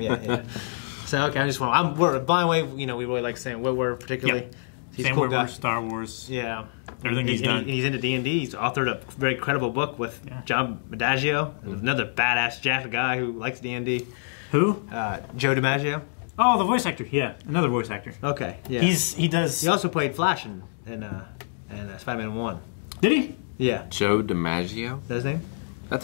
yeah. So, okay, I just want... by the way, we really like Sam Witwer, particularly. Yep. He's Sam a cool guy. Witwer, Star Wars. Yeah. Everything he's done. He's into D&D. He's authored a very credible book with John Adagio, another badass Jack guy who likes D&D. Who? Joe DiMaggio. Oh, the voice actor. Yeah, another voice actor. Okay, yeah. He also played Flash in Spider-Man 1. Did he? Yeah. Joe DiMaggio? Is that his name? That's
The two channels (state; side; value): silent; right; digital silence